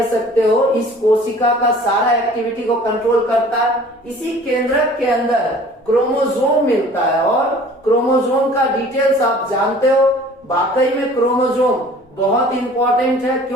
सकते हो इस कोशिका का सारा एक्टिविटी को कंट्रोल करता है। इसी केंद्रक के अंदर क्रोमोसोम मिलता है और क्रोमोसोम का डिटेल्स आप जानते हो। वाकई में क्रोमोसोम बहुत इंपॉर्टेंट है।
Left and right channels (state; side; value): normal; both; correlation 0.49